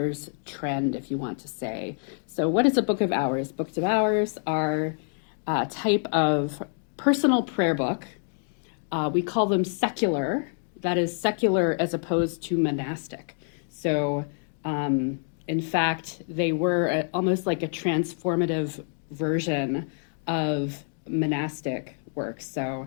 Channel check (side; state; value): right; silent; 60 dB below the other